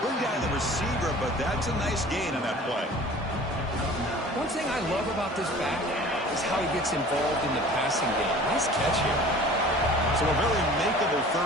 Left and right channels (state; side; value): normal; both; correlation 0.45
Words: bring down the receiver, but that's a nice gain on that play. One thing I love about this back is how he gets involved in the passing game. Nice catch here. So a very makeable